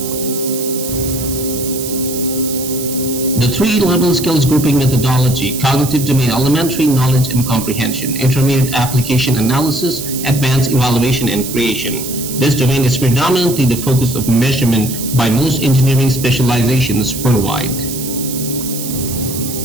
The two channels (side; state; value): right; noise; hiss, 8 dB below the sound